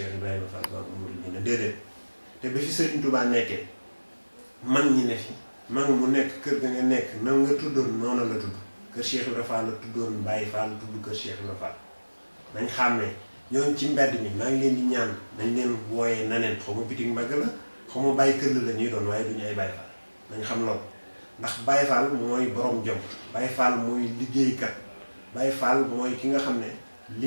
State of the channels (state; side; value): inverted; both; correlation -1.00